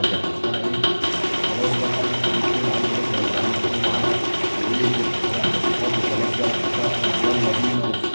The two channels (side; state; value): both; inverted; correlation -1.00